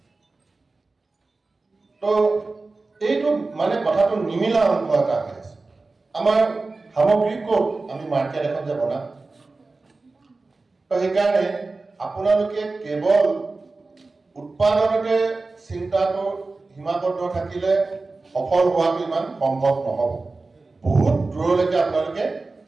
তো এইটো মানে কথাটো নিমিলা অংশ এটা হৈ আছে আমাৰ সামগ্ৰী ক'ত আমি মাৰ্কেট এখন যে বনাম তো সেইকাৰণে আপোনালোকে কেৱল উৎপাদনতে চিন্তাটো সীমাবদ্ধ থাকিলে সফল হোৱাটো ইমান সম্ভৱ নহ'ব বহুত দূৰলৈকে আপোনালোকে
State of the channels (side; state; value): left; quieter; 3.6 dB